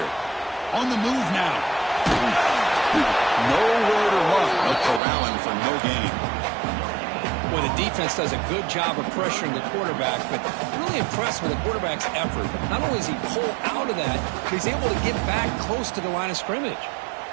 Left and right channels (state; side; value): drops out; left; at 5.0 s